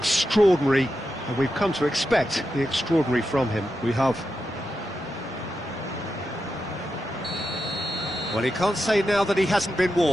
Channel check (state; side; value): normal; both; correlation 0.88